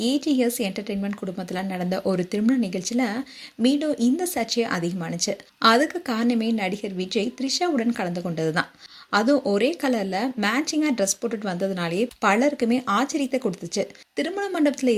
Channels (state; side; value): identical; both; correlation 1.00